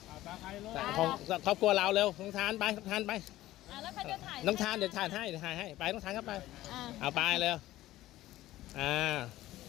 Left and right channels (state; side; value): quieter; right; 15.5 dB